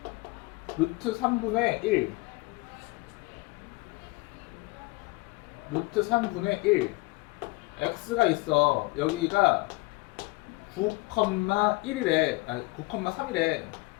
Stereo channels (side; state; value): right; quieter; 23.1 dB